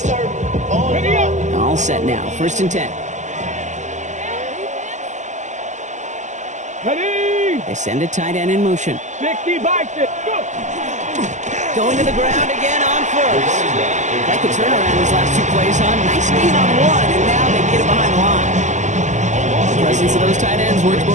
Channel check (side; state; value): left; late; 0.34 ms